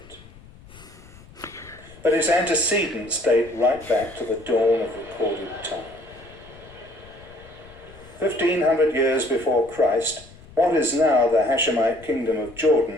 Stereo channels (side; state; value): left; noise; rumble, 22 dB below the sound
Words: But its antecedents date right back to the dawn of recorded time. 1,500 years before Christ, what is now the Hashemite kingdom of